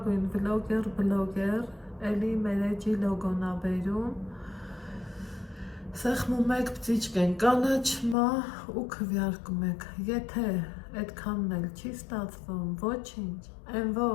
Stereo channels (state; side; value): drops out; right; at 8.2 s